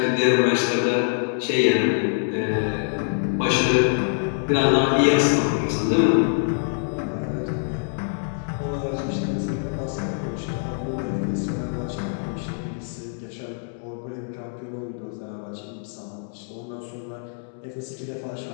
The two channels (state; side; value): silent; right; digital silence